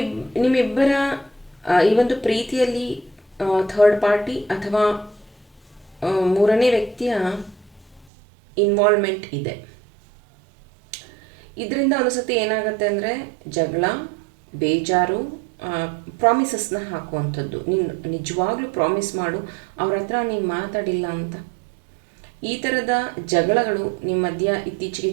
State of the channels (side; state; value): left; drops out; at 8.1 s